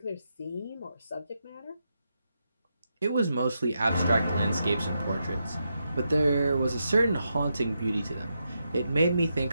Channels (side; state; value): both; inverted; correlation -0.84